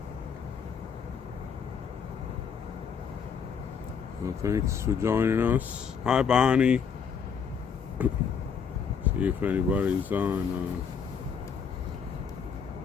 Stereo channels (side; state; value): right; quieter; 6.7 dB